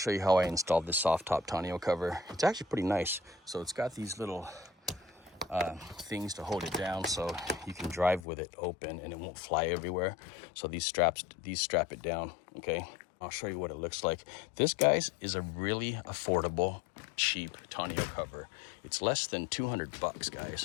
you how I installed this Softop Tonneau cover. It's actually pretty nice. So it's got these little things to hold it down so you can drive with it open and it won't fly everywhere. So these strap it down, okay? I'll show you what it looks like. This, guys, is a really affordable, cheap Tonneau cover. It's less than 200 bucks,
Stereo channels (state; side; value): drops out; right; at 8.2 s